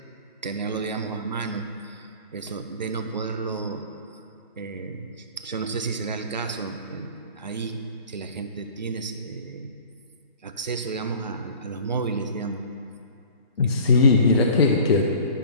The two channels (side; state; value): both; inverted; correlation -0.45